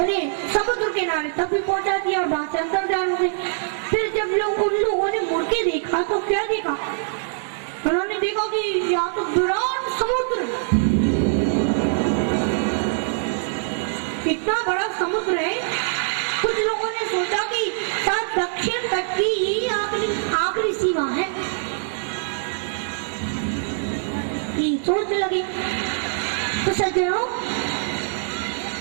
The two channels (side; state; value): left; silent; 63 dB below the other